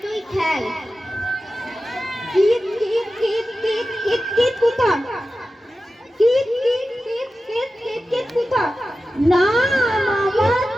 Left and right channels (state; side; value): normal; both; correlation 0.93